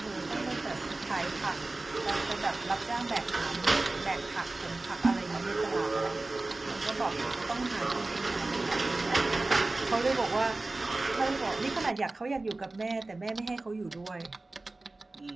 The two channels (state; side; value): quieter; left; 3.1 dB